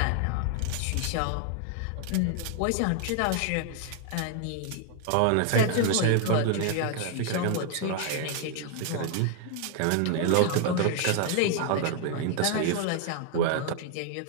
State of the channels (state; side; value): different; both; correlation 0.00